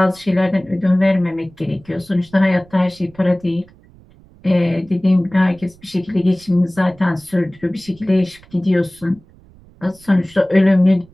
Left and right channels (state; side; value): noise; right; rumble, 26 dB below the sound